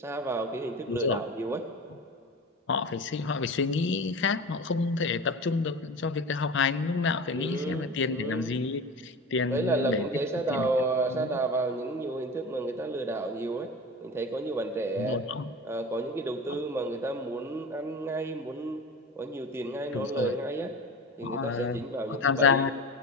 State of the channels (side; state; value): both; normal; correlation 0.32